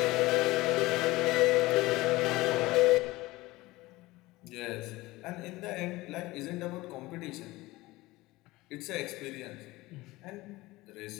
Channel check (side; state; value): right; quieter; 19.8 dB